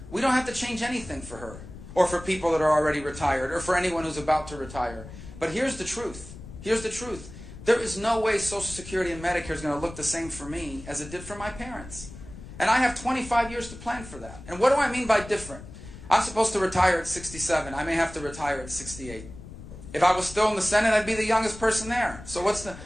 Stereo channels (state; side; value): noise; left; rumble, 14 dB below the sound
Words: we don't have to change anything for her or for people that are already retired or for anyone who's about to retire. But here's the truth. Here's the truth. There is no way Social Security and Medicare is going to look the same for me as it did for my parents. And I have 25 years to plan for that. And what do I mean by different? I'm supposed to retire at 67. I may have to retire at 68. If I was still in the Senate, I'd be the youngest person there. So what's the...